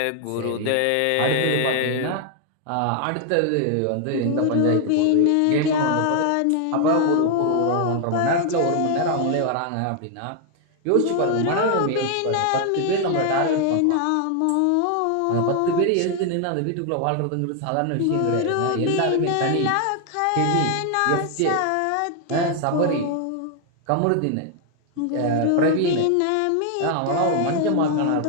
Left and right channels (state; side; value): different; both; correlation 0.00